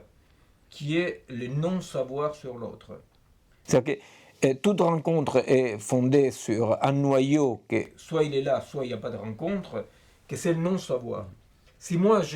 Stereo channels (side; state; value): both; identical; correlation 1.00